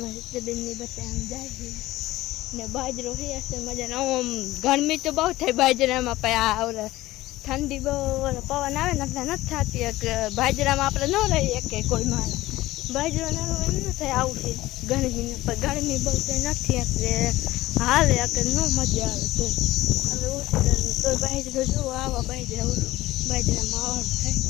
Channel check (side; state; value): right; quieter; 17.0 dB